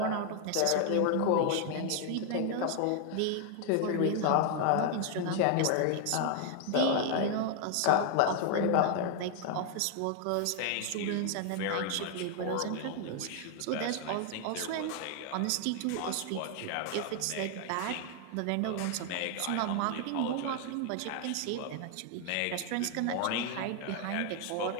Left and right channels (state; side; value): different; both; correlation 0.00